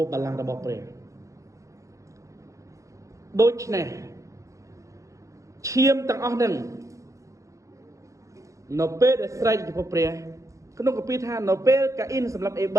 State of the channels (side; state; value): left; late; 0.15 ms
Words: ះបល្ល័ង្ករបស់ព្រះដូច្នេះឈាមទាំងអស់ហ្នឹងនៅពេលដែលស្រែកចំពោះព្រះក្នុងកាពីថានៅពេលកាអ៊ីនសម្រាប់អេប